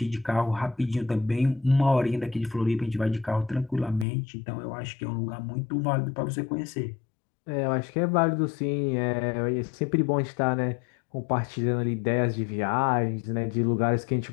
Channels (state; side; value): drops out; right; at 4.0 s